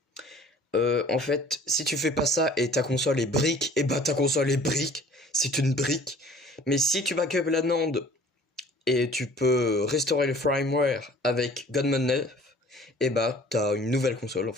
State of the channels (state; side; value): normal; both; correlation 0.50